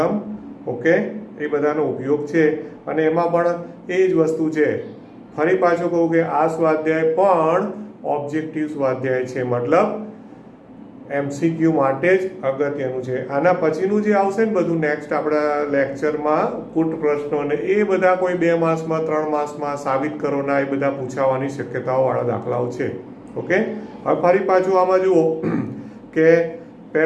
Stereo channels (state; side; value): identical; both; correlation 1.00